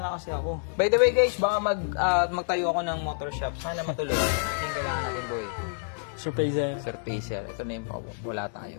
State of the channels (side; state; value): right; silent; digital silence